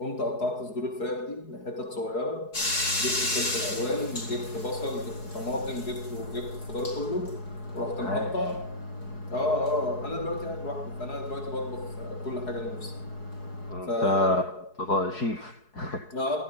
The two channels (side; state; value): right; late; 4.7 ms